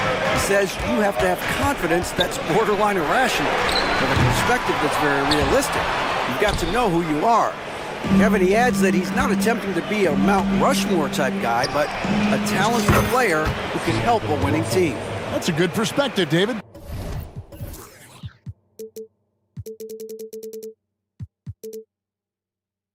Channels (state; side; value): identical; both; correlation 1.00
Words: says you have to have confidence that's borderline irrational, with a perspective that's very realistic. You've got to know who you are. Kevin, he adds that he's not attempting to be a Mount Rushmore type guy, but a talented player who can help a winning team. That's a good perspective, David.